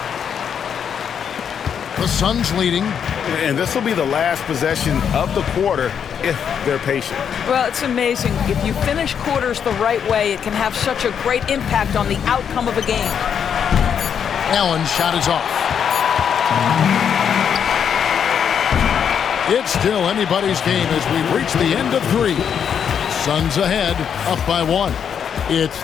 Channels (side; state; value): right; quieter; 7.8 dB